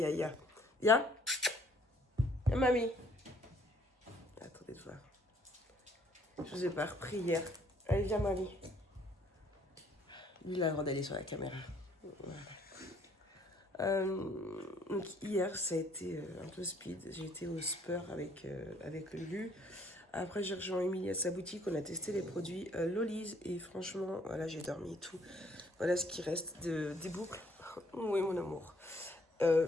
Il y a mamie. Attendez de voir. Je vous ai pas repris hier. Allez, viens mamie. Lui, il a le droit d'aller sur la caméra. Voilà. Donc hier, ça a été un peu speed. J'ai été au Spur avec Lulu. Après, j'ai rejoint Émilie à sa boutique. On a testé les produits Lollies. Et franchement, voilà, j'ai dormi et tout. Voilà ce qui reste des boucles. Oui, mon amour.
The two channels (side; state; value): both; normal; correlation 0.63